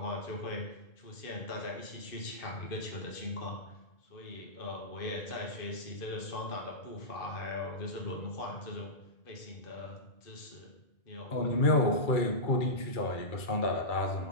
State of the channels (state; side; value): late; right; 2.3 ms